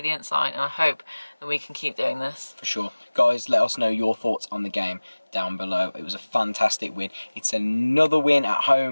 sign, and I hope that we can keep doing this. For sure. Guys, let us know your thoughts on the game down below. It was a fantastic win. It's another win at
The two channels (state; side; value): inverted; both; correlation -1.00